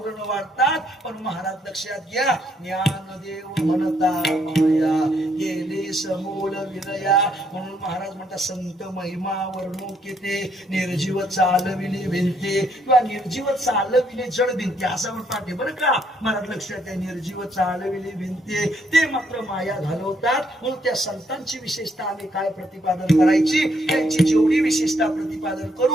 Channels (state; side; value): normal; both; correlation 0.71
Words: वाढतात. पण महाराज लक्षात घ्या, ज्ञानदेव म्हणता माया गेले समूल विलया. म्हणून महाराज म्हणतात संत महिमा वर्णुकेते निर्जीव चालविले भिंते. किंवा निर्जीव चालविले जड भिंते असं म्हणतात बरं का महाराज. लक्षात आहे, निर्जीव चालविले भिंते ते मात्र माया घालवतात. म्हणून त्या संतांची विशेषता आम्ही काय प्रतिपादन करायची, त्यांची जेवढी विशेषता प्रतिपादन